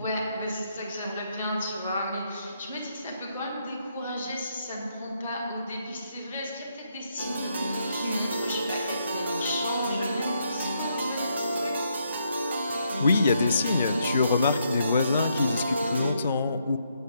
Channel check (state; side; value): inverted; both; correlation -0.76